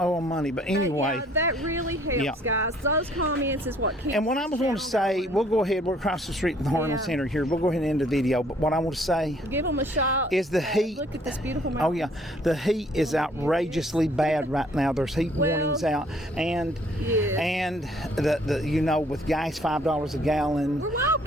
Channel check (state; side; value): normal; both; correlation 0.61